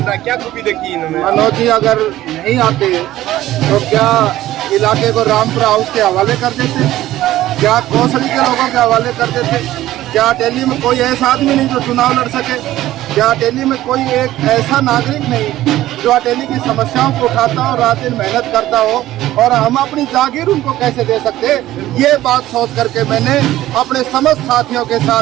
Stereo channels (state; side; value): quieter; left; 14.8 dB